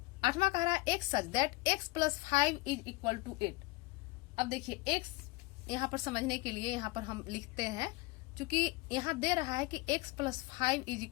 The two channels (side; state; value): right; quieter; 23.7 dB